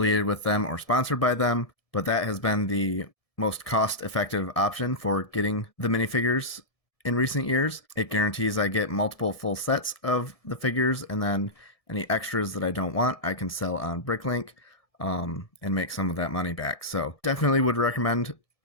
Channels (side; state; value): right; late; 1.7 ms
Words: with them or sponsored by them, but that has been the most cost-effective option for getting the minifigures in recent years. It guarantees I get multiple full sets of the figures, and then any extras that I don't want, I can sell on Bricklink and make some of that money back. So definitely would recommend